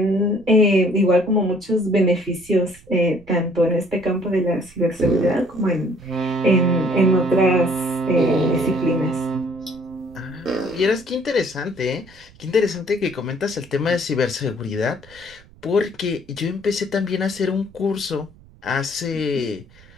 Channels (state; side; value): noise; right; rumble, 25 dB below the sound